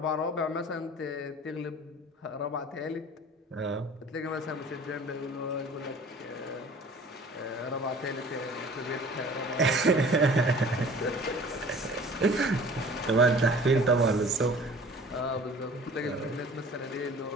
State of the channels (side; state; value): both; normal; correlation 0.47